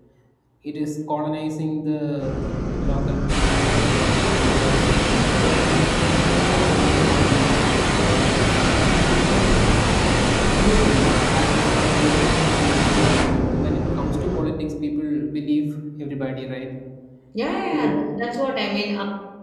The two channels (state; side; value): identical; both; correlation 1.00